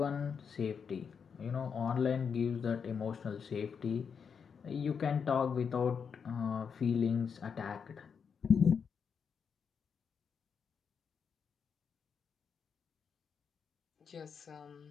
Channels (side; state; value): right; quieter; 6.5 dB